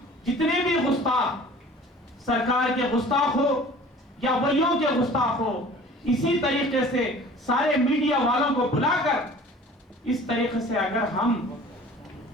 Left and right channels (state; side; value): normal; both; correlation 0.46